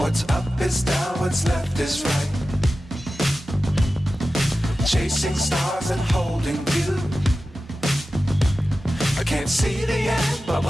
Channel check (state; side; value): normal; both; correlation 0.94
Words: What's up is down, what's left is right. Chasing stars and holding you. I can't see the end, but